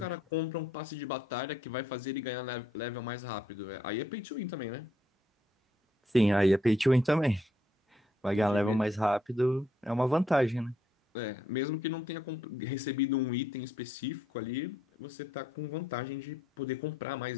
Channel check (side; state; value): both; normal; correlation 0.71